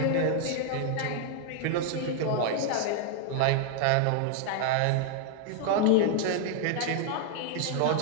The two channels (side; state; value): both; different; correlation 0.00